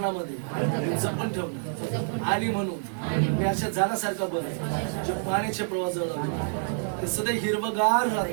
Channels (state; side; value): silent; left; 60 dB below the other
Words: जपून ठेवणार. आणि म्हणून मी अशा झाडासारखा बनतो जे पाण्याच्या प्रवाहाजवळ लावतो. ते सदैव हिरवगार